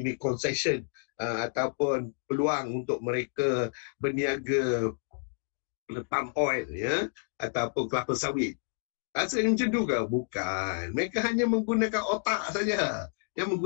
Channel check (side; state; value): right; silent; digital silence